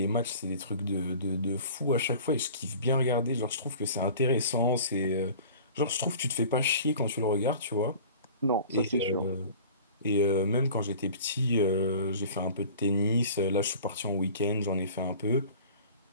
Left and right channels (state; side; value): inverted; both; correlation -0.43